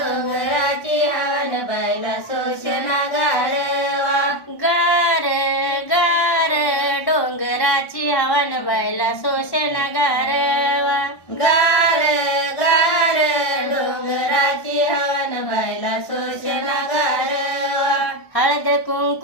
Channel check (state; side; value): late; right; 1.1 ms